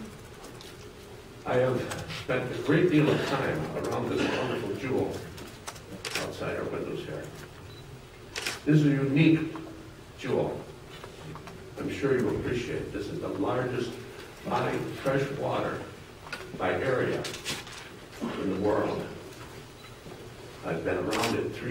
I have spent a great deal of time around this wonderful jewel outside our windows here. This is a unique jewel. I'm sure you appreciate. This is the largest body of fresh water by area in the world. I've been around it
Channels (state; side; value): identical; both; correlation 1.00